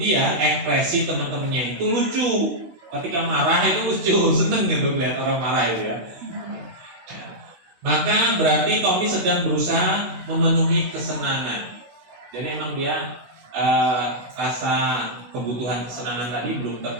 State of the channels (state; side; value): late; left; 16 ms